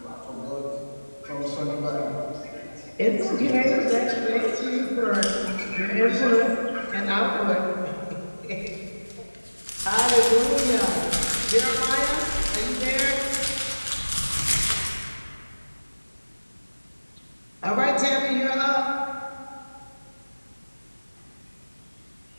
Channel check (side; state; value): both; inverted; correlation -1.00